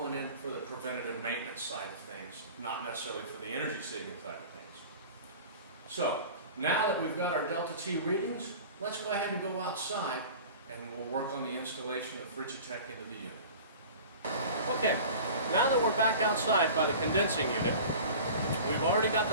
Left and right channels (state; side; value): inverted; both; correlation -0.39